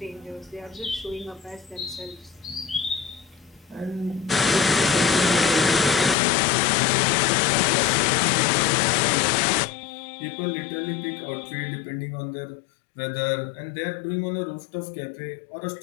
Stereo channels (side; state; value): right; drops out; at 6.2 s